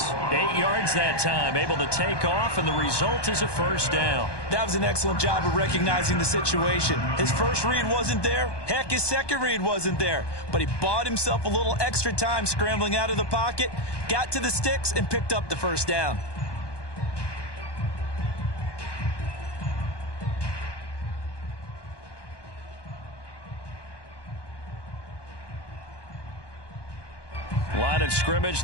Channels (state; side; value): late; right; 1.2 ms